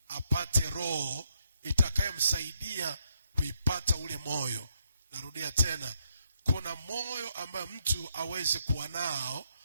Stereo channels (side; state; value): both; inverted; correlation -0.78